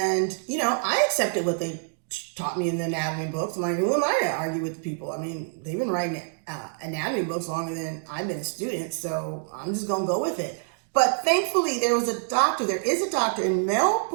I accepted what they taught me in the anatomy books. I'm like, who am I to argue with people? I mean, they've been writing anatomy books longer than I've been a student, so I'm just gonna go with it. But thankfully, there is a doctor in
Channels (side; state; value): left; silent; digital silence